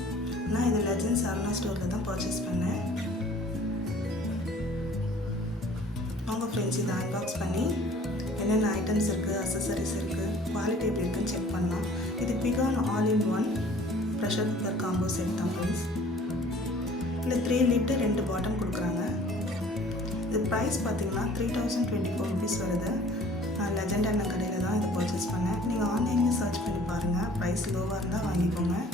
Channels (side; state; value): both; normal; correlation 0.51